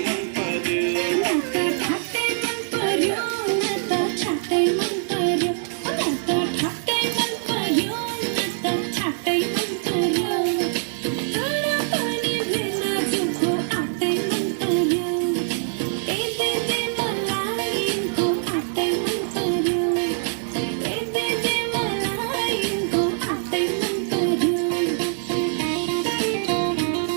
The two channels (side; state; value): left; silent; digital silence